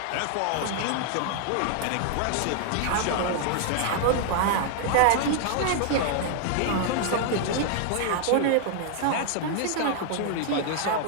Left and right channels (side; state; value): both; different; correlation 0.00